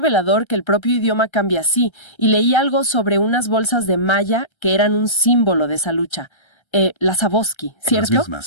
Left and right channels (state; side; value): late; right; 1.3 ms